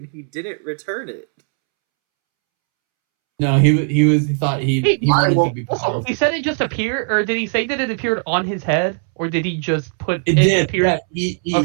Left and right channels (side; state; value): left; silent; 67 dB below the other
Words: he didn't return it. No, he thought he wanted to be powerful. He said it just appeared, or did he say that it appeared on his head, or did he just put it? Did appear? Yeah,